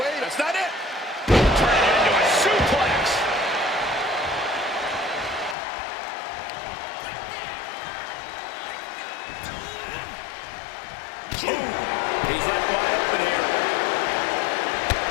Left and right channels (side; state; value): right; drops out; at 5.6 s